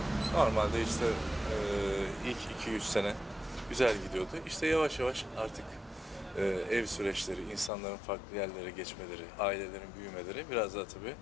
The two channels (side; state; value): right; drops out; at 7.7 s